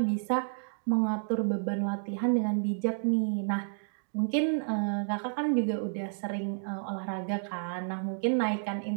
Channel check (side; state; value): left; silent; digital silence